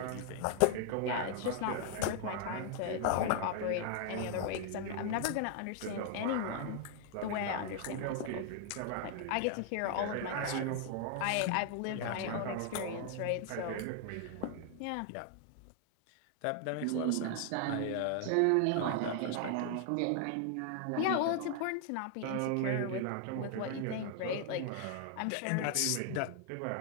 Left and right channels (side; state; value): both; different; correlation 0.00